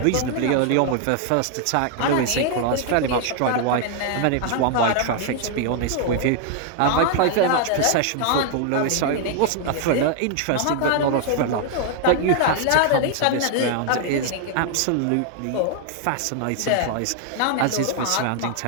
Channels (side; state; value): both; different; correlation 0.00